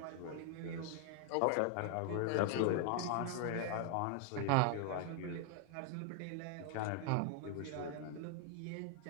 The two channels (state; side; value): different; both; correlation 0.00